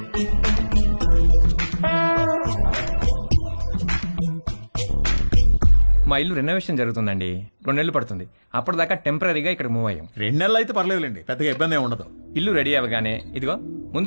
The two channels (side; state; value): both; inverted; correlation -1.00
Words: మా ఇల్లు రెనోవేషన్ జరుగుతుందండి, 2 నెలలు పడుతుంది. అప్పటిదాకా టెంపరీగా ఇక్కడ మూవ్ అయ్యాం. 2 నెలలు అయితే పర్లేదులేండి, పెద్దగా ఇబ్బంది ఏమి ఉండదు. ఇల్లు రెడీ అవ్వగానే ఇదిగో